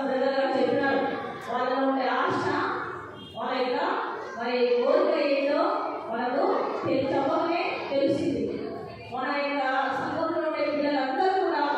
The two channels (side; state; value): both; identical; correlation 1.00